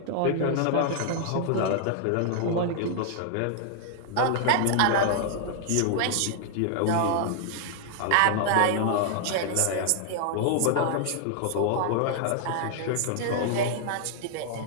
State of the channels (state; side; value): different; both; correlation -0.01